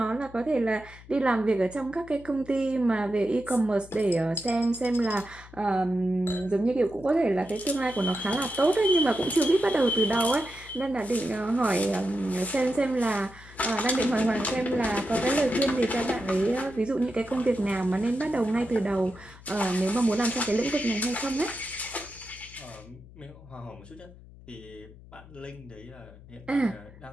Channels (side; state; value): left; noise; hum, 20 dB below the sound